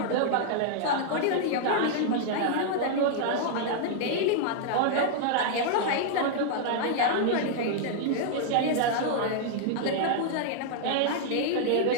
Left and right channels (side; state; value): both; different; correlation -0.01